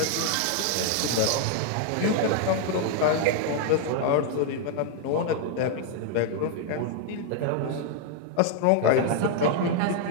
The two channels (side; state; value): both; different; correlation 0.00